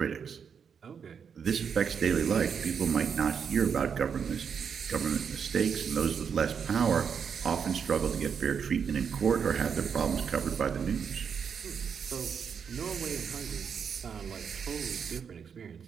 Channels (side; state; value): left; quieter; 6.9 dB